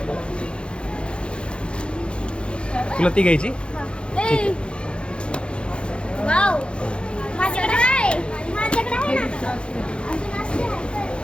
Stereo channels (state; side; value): late; right; 0.056 ms